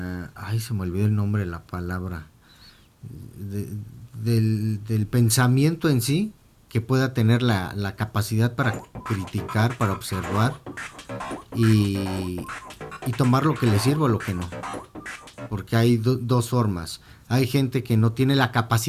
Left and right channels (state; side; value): identical; both; correlation 1.00